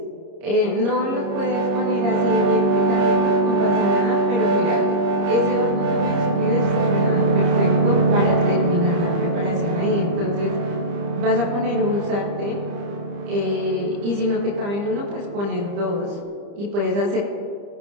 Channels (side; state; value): left; late; 30 ms